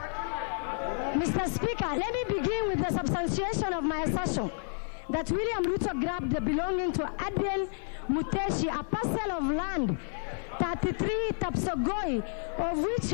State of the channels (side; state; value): right; silent; 56 dB below the other